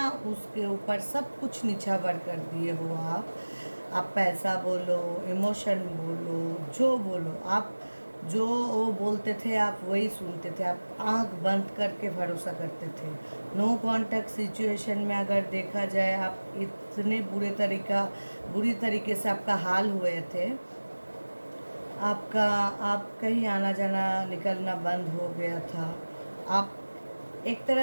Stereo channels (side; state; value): both; inverted; correlation -1.00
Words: उसके ऊपर सब कुछ निछावर कर दिए हो। आप पैसा बोलो, इमोशन बोलो, जो बोलो, आप जो वो बोलते थे आप वही सुनते थे, आप आंख बंद करके भरोसा करते थे। नो कॉन्टैक्ट सिचुएशन में अगर देखा जाए, आप इतने बुरी तरीके से आपका हाल हुए थे, आप कहीं आना जाना निकलना बंद हो गया था। आप एक